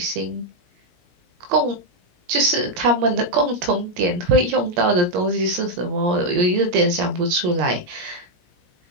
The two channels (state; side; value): late; left; 17 ms